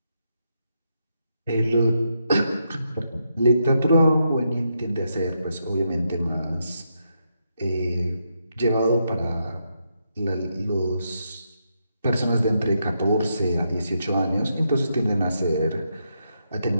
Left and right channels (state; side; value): inverted; both; correlation -0.81